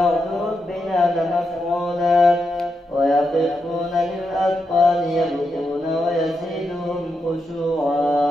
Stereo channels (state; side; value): normal; both; correlation 0.85